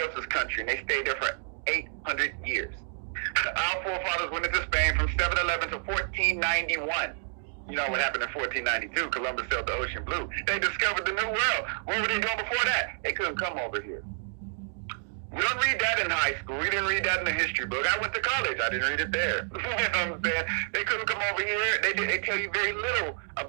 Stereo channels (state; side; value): silent; left; digital silence